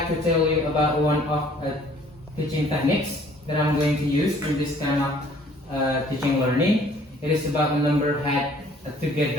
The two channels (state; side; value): normal; both; correlation 0.57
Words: to tell you about one of teaching techniques that I'm going to use in this kind of teaching learning. It is about the number head